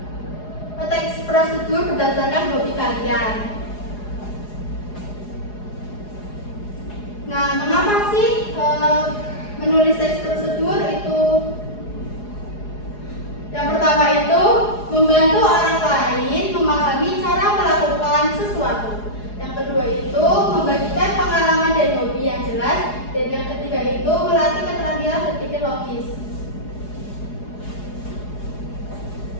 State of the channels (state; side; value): late; right; 4.8 ms